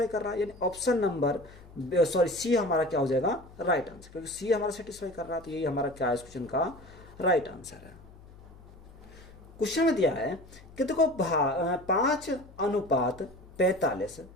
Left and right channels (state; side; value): noise; left; hum, 21 dB below the sound